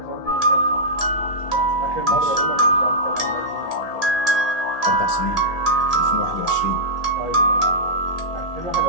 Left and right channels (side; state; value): right; late; 1.8 ms